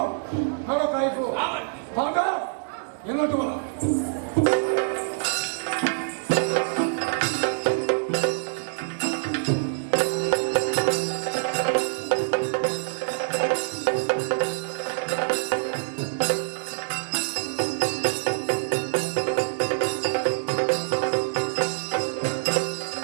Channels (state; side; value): silent; left; digital silence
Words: ಹಣ ಕಾಯಿಪು ಭಾಗ ಎನ್ನೋಟು ಬಲ